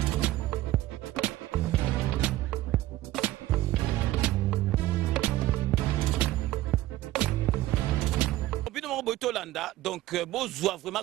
Donc, besoin vraiment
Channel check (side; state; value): left; quieter; 15.9 dB